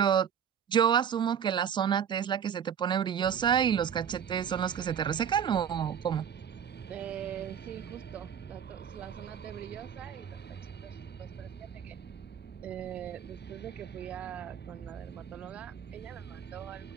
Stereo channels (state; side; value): quieter; left; 8.2 dB